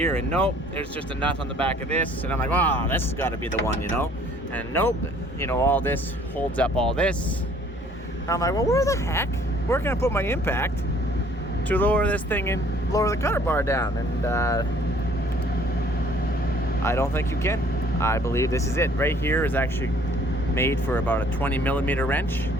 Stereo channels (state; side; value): normal; both; correlation 0.57